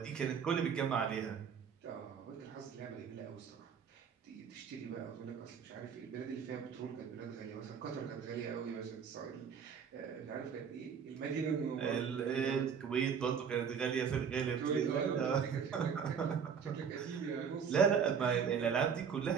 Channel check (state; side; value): quieter; left; 6.9 dB